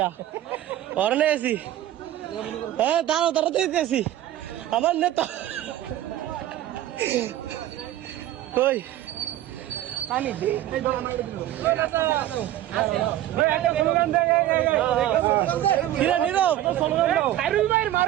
অরনে আছি হ্যাঁ দাঁড়াও তাড়াতাড়ি আছি আমার নেতা কই খাইরুল ভাইয়ের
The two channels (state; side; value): quieter; left; 13.3 dB